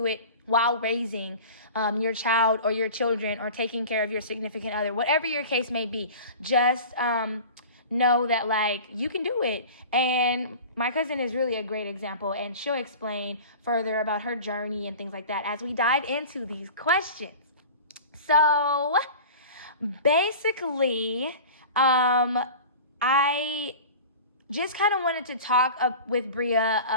it while raising your child or your children or taking care of your significant other, whatever your case may be. Just know that, like, you can do it. And my cousin is really a great example, and she'll explain further about her journey and things like that as we dive into these questions. So basically, I just kind of wanted to talk with Bria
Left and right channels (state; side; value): inverted; both; correlation -0.37